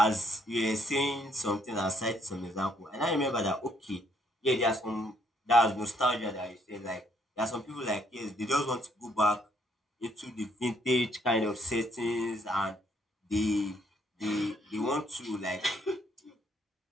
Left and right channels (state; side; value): normal; both; correlation 0.69